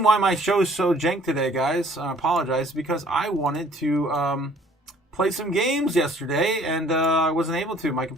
why my show is so jank today, guys, I apologize, because I wanted to play some games yesterday, and I wasn't able to. My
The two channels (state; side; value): normal; both; correlation 0.56